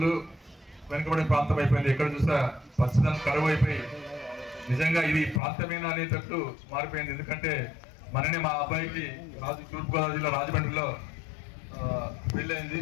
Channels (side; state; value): right; drops out; at 5.4 s